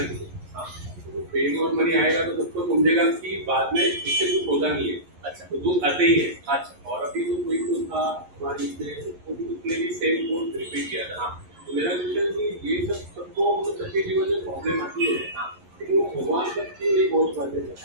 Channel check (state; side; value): late; left; 11 ms